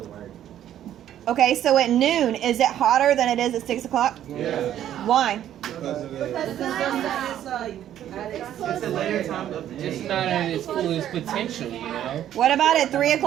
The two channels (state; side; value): quieter; left; 11.3 dB